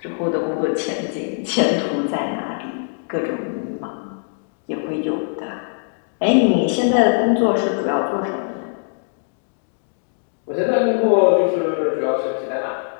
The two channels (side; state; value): right; silent; digital silence